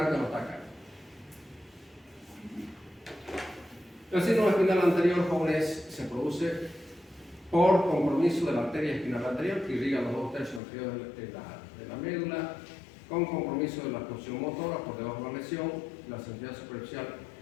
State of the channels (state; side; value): drops out; right; at 10.6 s